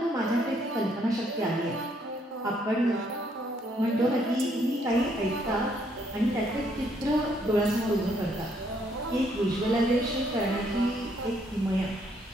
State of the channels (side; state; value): both; normal; correlation 0.70